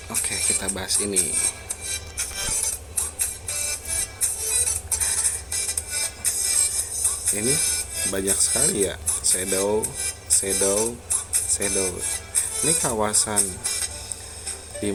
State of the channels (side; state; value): both; identical; correlation 1.00